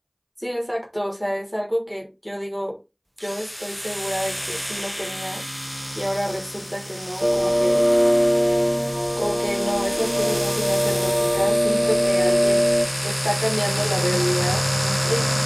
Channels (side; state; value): both; identical; correlation 1.00